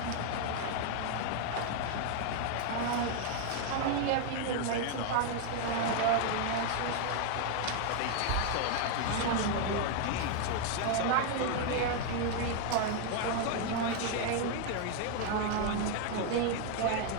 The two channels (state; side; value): different; both; correlation 0.00